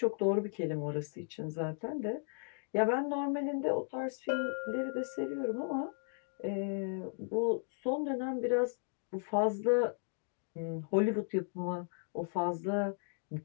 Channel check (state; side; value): silent; right; 54 dB below the other